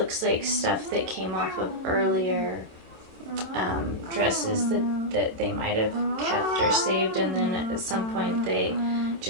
like stuff that came off of earlier dresses that they might have kept or saved, and then at some point they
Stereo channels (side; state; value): left; late; 27 ms